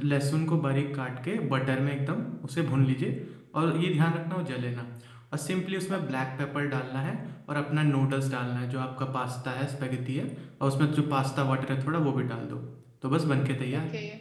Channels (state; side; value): identical; both; correlation 1.00